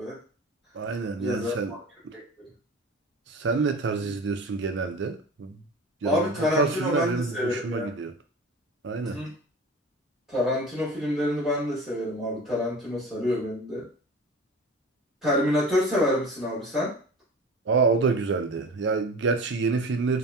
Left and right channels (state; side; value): normal; both; correlation 0.36